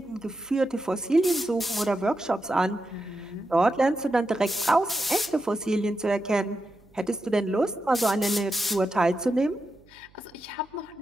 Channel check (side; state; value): right; noise; hum, 29 dB below the sound